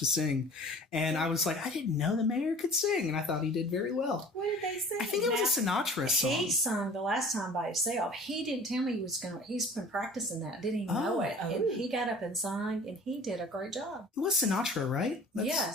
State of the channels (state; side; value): normal; both; correlation 0.45